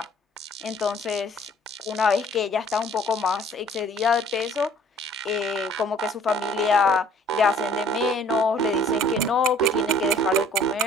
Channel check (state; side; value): normal; both; correlation 0.55